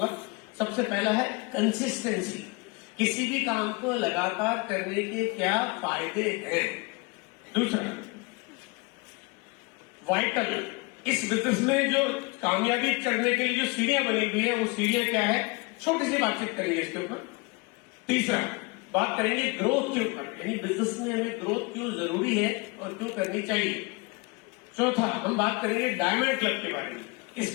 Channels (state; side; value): quieter; right; 27.8 dB